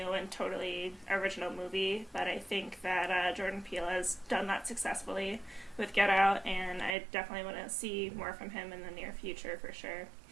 and totally original movie, but I think that Jordan Peele has done that successfully with Get Out, and I definitely want to see more from him in the near future for sure.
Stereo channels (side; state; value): left; drops out; at 7.0 s